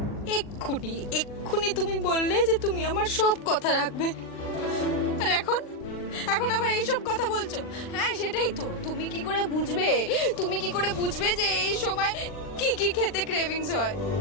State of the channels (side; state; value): right; late; 40 ms